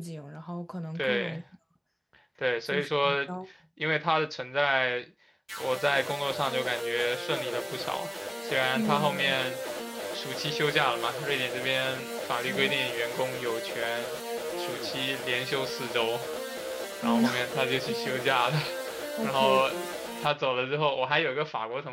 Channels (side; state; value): both; identical; correlation 1.00